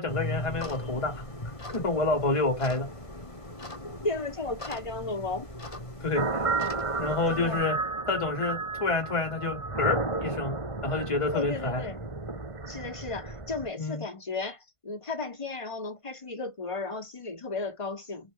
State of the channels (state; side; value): late; right; 1.5 ms